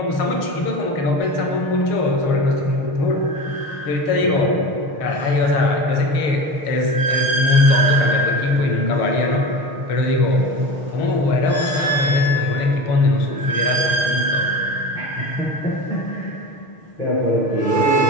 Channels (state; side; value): late; right; 6.5 ms